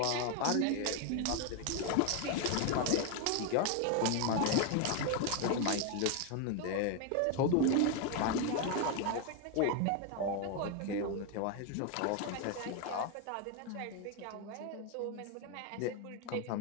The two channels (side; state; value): both; different; correlation 0.01